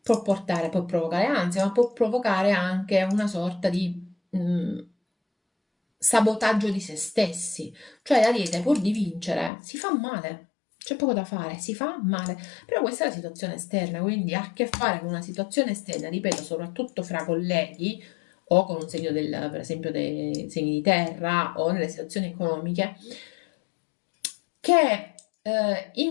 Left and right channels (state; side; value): drops out; right; at 9.5 s